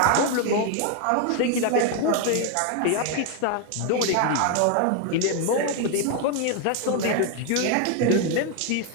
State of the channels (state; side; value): different; both; correlation 0.01